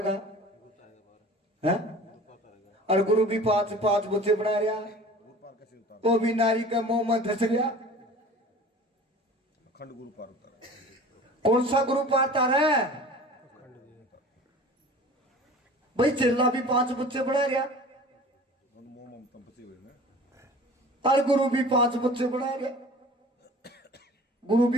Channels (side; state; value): both; normal; correlation 0.42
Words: है? और गुरु भी 5 बच्चे बना रहा, वो भी नारी का मुंह में धस रहा। अखंड गुरु पार उतारा। कौन सा गुरु पारता रहा? भाई चिल्ला भी 5 बच्चे बना रहा और गुरु भी 5 बच्चे बना रहा। गुरु